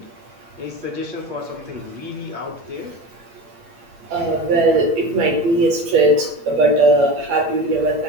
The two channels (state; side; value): late; left; 8.6 ms